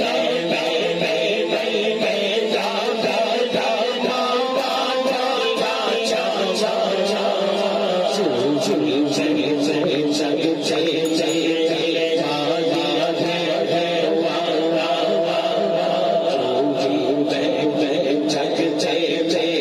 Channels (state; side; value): identical; both; correlation 1.00